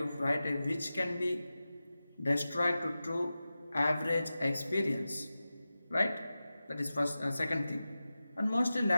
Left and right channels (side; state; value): both; inverted; correlation -0.94